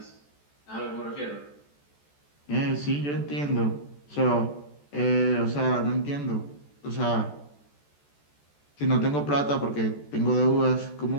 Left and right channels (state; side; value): late; right; 14 ms